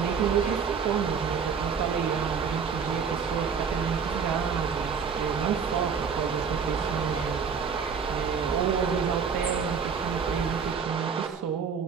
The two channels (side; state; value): left; quieter; 6.2 dB